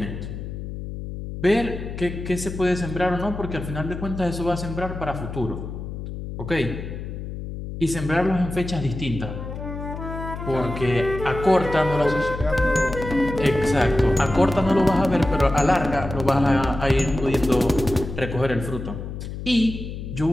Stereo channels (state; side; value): noise; left; hum, 8 dB below the sound